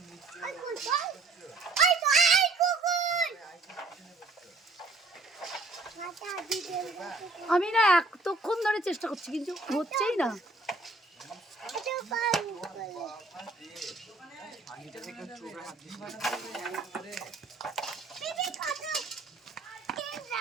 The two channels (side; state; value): left; quieter; 3.4 dB